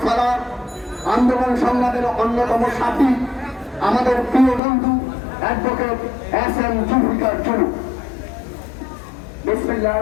সালার, আন্দোলন সংগ্রামের অন্যতম সাথী, আমাদের প্রিয় বন্ধু অ্যাডভোকেট এস.এম. জুলফিকার জুলু।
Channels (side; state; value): right; drops out; at 4.6 s